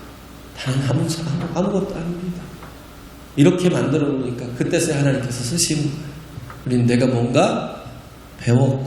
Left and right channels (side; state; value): both; identical; correlation 1.00